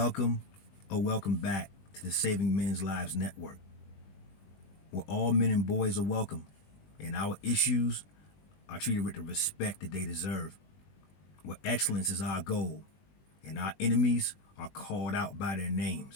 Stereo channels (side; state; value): right; late; 21 ms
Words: or welcome back to the Saving Men's Lives Network, where all men and boys are welcome and our issues are treated with the respect that they deserve, where excellence is our goal and our enemies are called out by their